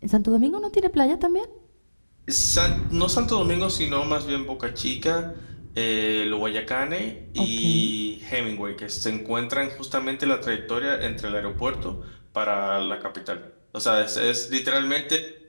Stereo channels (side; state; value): both; inverted; correlation -1.00